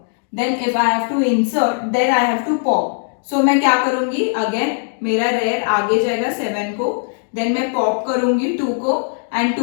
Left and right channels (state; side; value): silent; right; digital silence